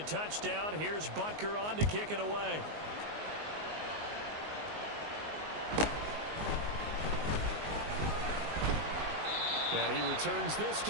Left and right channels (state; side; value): late; left; 19 ms